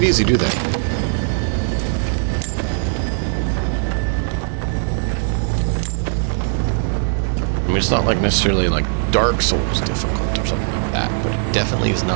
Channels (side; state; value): left; silent; 64 dB below the other